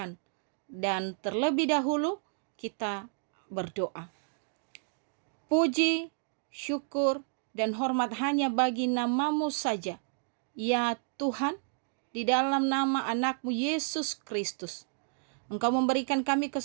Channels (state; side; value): silent; left; digital silence